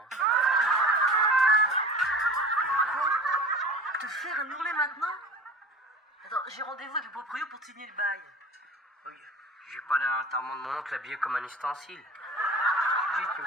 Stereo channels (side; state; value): both; normal; correlation 0.37